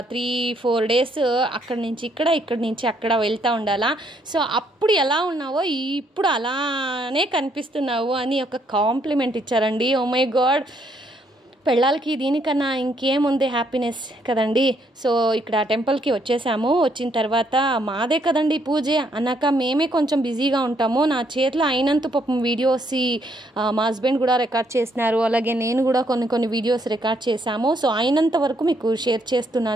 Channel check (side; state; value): both; normal; correlation 0.71